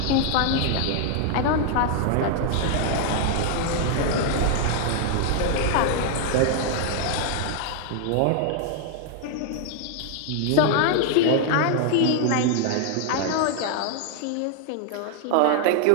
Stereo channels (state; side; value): different; both; correlation 0.00